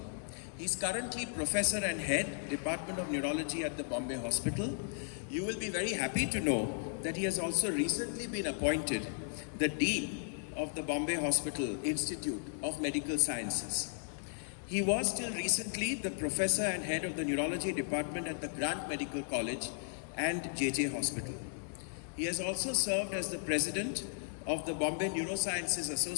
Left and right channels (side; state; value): right; silent; digital silence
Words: He is currently Professor and Head, Department of Neurology at the Bombay Hospital. You will be very happy to know that he has also recently been appointed the Dean of the Bombay Hospital Institute of Medical Sciences. He was till recently the Professor and Head of the Neurology Department at the Grant Medical College and JJ Hospital. He has also served as the President of the Bombay Neurosciences